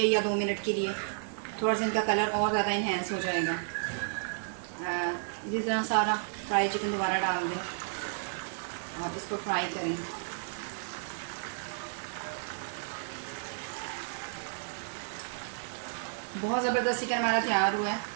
या 2 मिनट के लिए। थोड़ा सा इनका कलर और ज़्यादा इन्हेंस हो जाएगा। इसी तरह सारा फ्राई चिकन दोबारा डाल दें और इसको फ्राई करें। बहुत ज़बरदस्त चिकन हमारा तैयार हुआ है।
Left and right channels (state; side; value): silent; left; digital silence